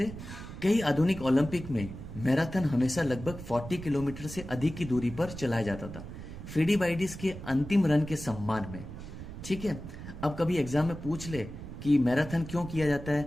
कई आधुनिक ओलंपिक में मैराथन हमेशा लगभग 40 किलोमीटर से अधिक की दूरी पर चलाया जाता था, फिलिपाइडस के अंतिम रन के सम्मान में, ठीक है। अब कभी एग्जाम में पूछ ले कि मैराथन क्यों किया जाता है,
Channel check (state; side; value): noise; right; rumble, 11 dB below the sound